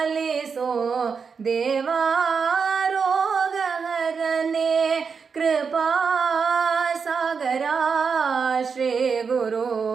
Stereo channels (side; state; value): left; quieter; 5.7 dB